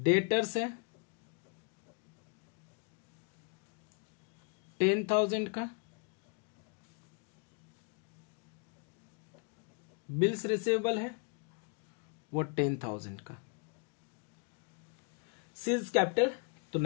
है 10,000 का, बिल्स रिसीवेबल है वो 10,000 का, सीज कैपिटल तो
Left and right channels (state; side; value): quieter; right; 37.3 dB